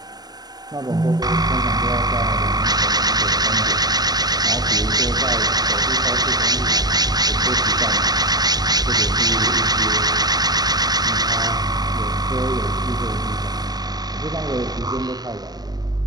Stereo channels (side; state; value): left; late; 0.19 ms